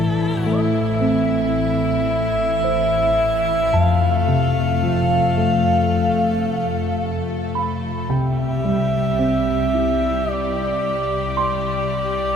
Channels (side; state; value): both; normal; correlation 0.67